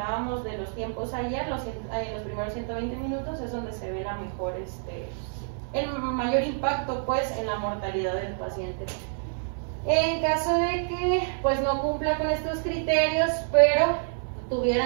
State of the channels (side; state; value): left; silent; 60 dB below the other